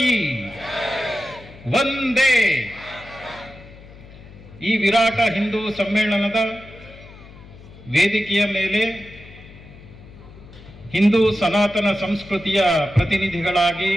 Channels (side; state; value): left; noise; hum, 19 dB below the sound